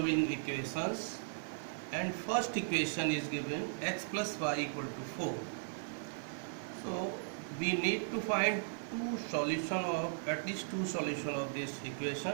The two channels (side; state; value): left; silent; digital silence